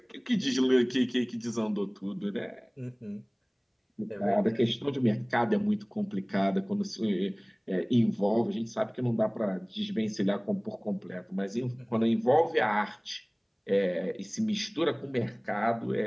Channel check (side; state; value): both; identical; correlation 1.00